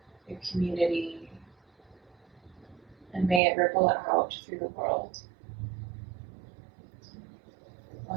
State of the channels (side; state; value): left; drops out; at 3.4 s